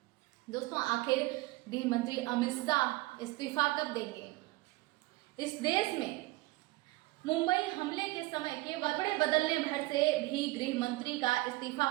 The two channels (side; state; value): left; quieter; 20.3 dB